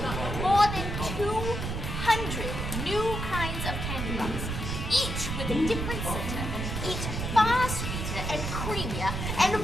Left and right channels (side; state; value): right; noise; rumble, 3 dB below the sound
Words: more than 200 new kinds of candy bars, each with a different center, each far sweeter and creamier and